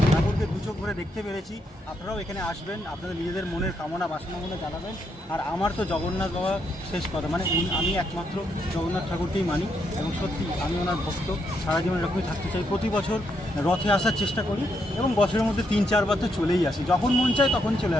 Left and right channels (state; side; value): normal; both; correlation 0.78